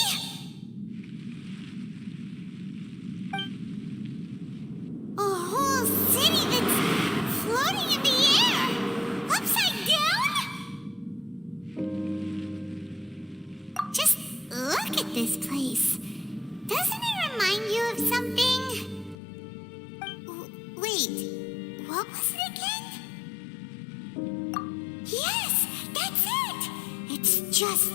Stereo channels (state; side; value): drops out; right; at 19.2 s